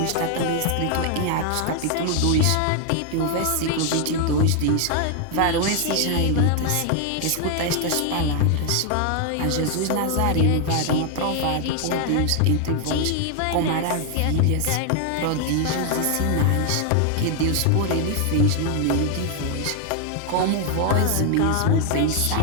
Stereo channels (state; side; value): different; both; correlation 0.00